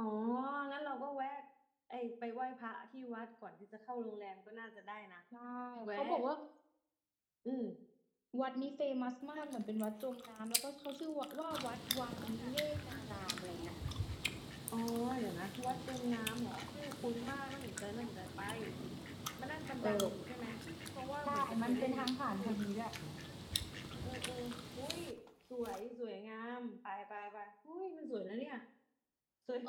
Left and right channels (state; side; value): identical; both; correlation 1.00